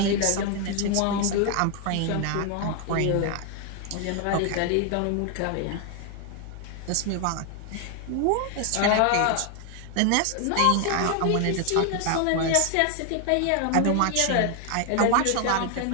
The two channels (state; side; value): different; both; correlation 0.00